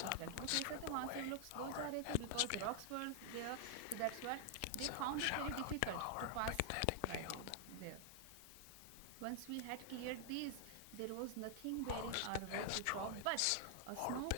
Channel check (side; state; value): both; different; correlation 0.00